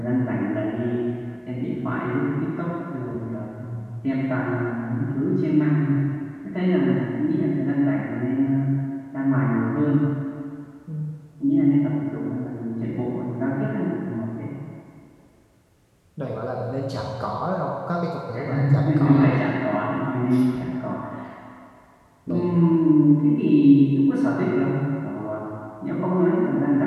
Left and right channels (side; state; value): both; identical; correlation 1.00